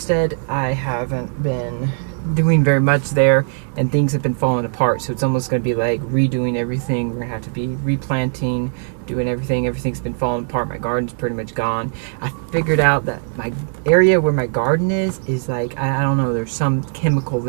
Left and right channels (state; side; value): silent; left; digital silence